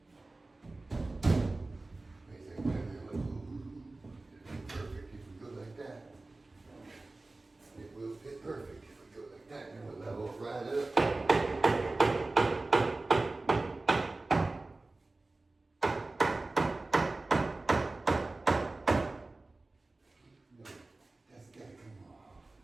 Perfect if we go like that. It will fit perfect if we go like that, and we'll level right up. No, that's gotta come off.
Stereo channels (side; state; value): left; quieter; 3.1 dB